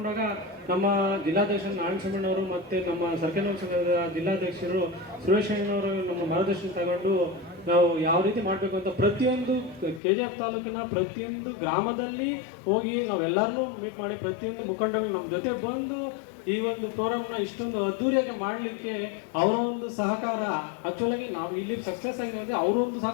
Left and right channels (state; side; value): drops out; right; at 10.0 s